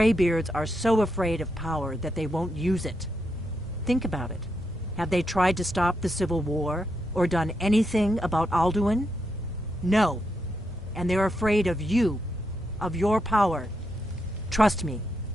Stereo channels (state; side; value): normal; both; correlation 0.82